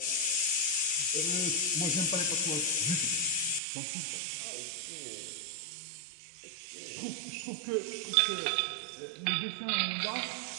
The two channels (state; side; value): drops out; left; at 3.6 s